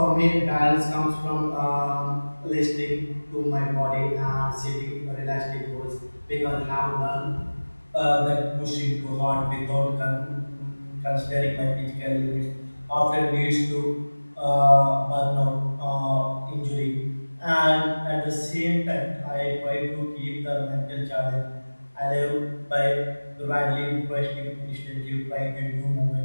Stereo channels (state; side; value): inverted; both; correlation -1.00